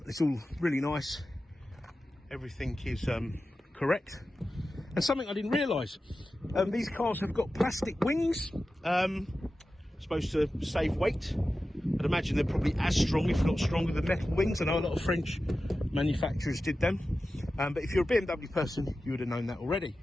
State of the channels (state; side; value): normal; both; correlation 0.93